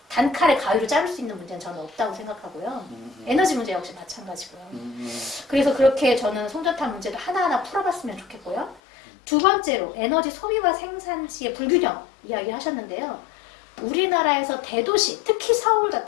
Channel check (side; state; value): right; drops out; at 8.8 s